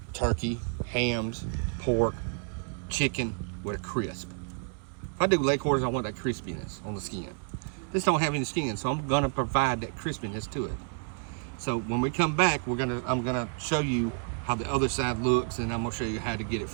turkey, hams, pork, chicken with a crisp. If I do leg quarters, I want that crispiness on the skin. This don't have any skin, so I'm gonna provide that crispiness to it. So when we come back, I'm gonna show you how the other side looks, and I'm gonna show you how to get it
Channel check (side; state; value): left; quieter; 36.3 dB